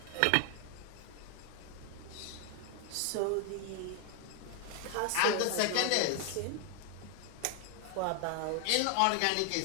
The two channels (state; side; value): different; both; correlation 0.00